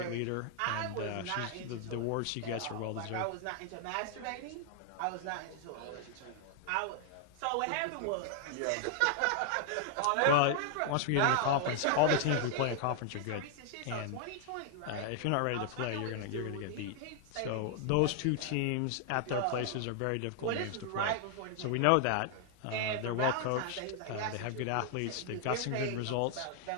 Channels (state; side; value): different; both; correlation 0.00